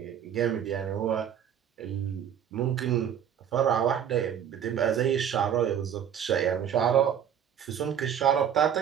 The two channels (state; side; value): quieter; left; 9.1 dB